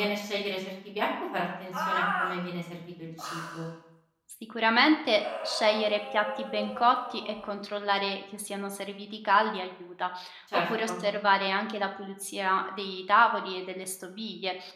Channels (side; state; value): both; identical; correlation 1.00